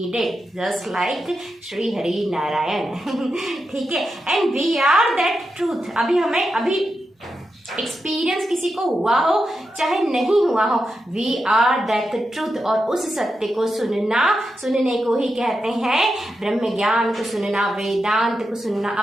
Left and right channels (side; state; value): both; normal; correlation 0.88